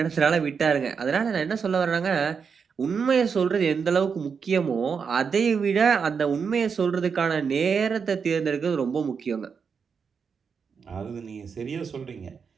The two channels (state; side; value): quieter; left; 6.1 dB